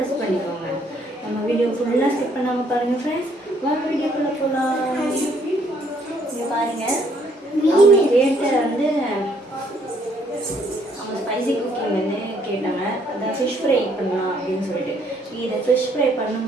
பண்ணிக்கோங்க. நம்ம வீடியோ ஃபுல்லாக ஸ்கிப் பண்ணாமல் பாருங்கள் ஃப்ரெண்ட்ஸ். வாங்க வீடியோக்குள்ளே போகலாம். இங்கே பாருங்கள், அவங்க கேட்ட வந்து அவங்க ஸ்பைசி குக்கிங் வந்து கேட்டாங்க. அதான் ஃபிஷ் ஃப்ரை பண்ணலாம் அப்படின்னு சொல்லிட்டு. இதை ஃபிஷ் ஃப்ரை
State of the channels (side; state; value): both; normal; correlation 0.67